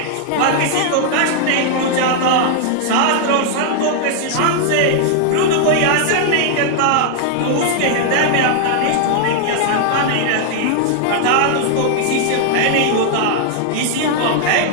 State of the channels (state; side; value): different; both; correlation 0.00